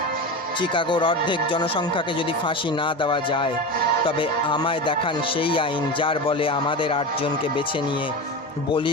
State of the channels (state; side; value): normal; both; correlation 0.25